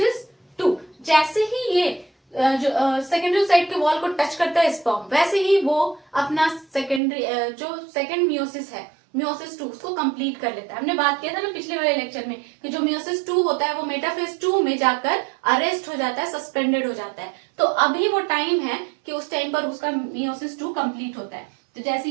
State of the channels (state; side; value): drops out; left; at 7.0 s